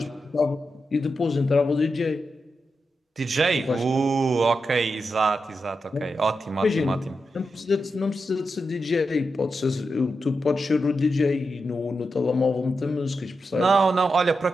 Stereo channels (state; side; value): normal; both; correlation 0.88